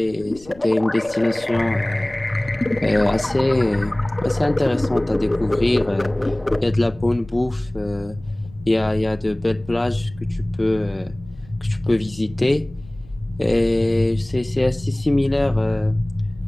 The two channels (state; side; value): noise; left; rumble, 22 dB below the sound